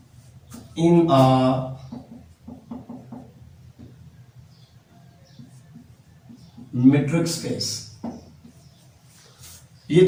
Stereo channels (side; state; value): both; identical; correlation 1.00